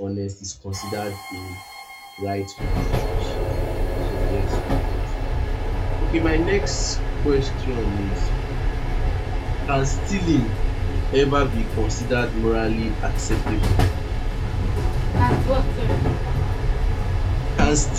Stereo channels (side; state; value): both; identical; correlation 1.00